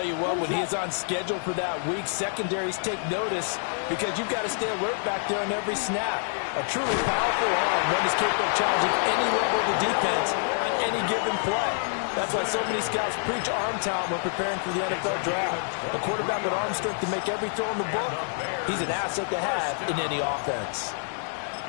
you what, when he is on schedule for that week, secondaries take notice because you've got to stay alert back there on every snap. A truly powerful arm, one is capable of challenging any level of the defense on any given play. That's why so many scouts preach arm talent when preparing for the NFL draft. A quarterback with arm strength to make every throw in the book, he's an asset to have in any offense.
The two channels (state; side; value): silent; right; 60 dB below the other